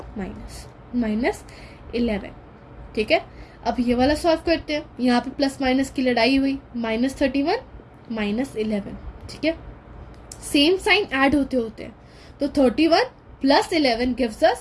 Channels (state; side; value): identical; both; correlation 1.00